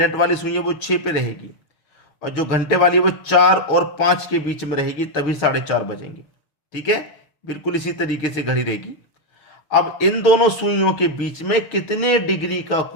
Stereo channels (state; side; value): late; right; 6.5 ms